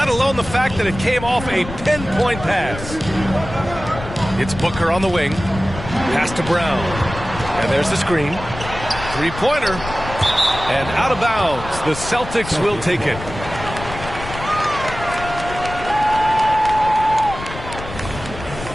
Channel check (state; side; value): noise; left; rumble, 11 dB below the sound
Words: alone the fact that it came off a pinpoint pass. It's Booker on the wing. Pass to Brown. And there's the screen. Three-pointer. And out of bounds. The Celtics will take it.